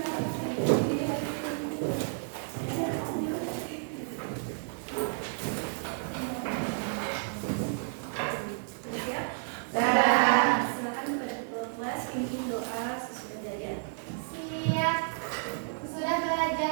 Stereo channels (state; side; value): silent; left; 57 dB below the other